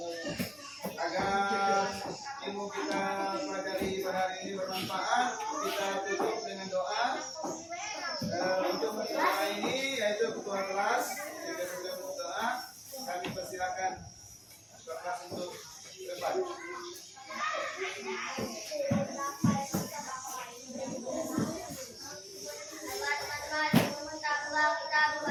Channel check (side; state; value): both; identical; correlation 1.00